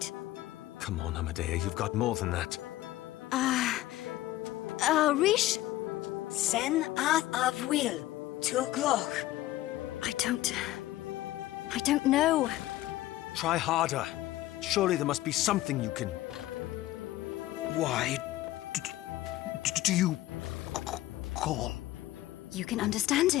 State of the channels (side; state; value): right; quieter; 15.7 dB